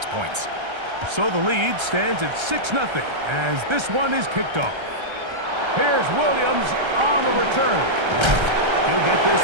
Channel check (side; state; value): left; late; 1.3 ms